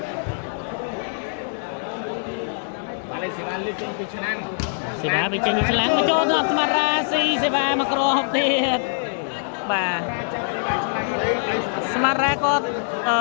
បាទលេងសេវាលេងចេញពីឆ្នាំង សេវាវាចេញពីឆ្លាំងមកចូលដល់ស្មារ៉ាស៊ីសេវាមកក្រហបទៀតបាទស្មារ៉ាគាត់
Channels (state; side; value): silent; right; digital silence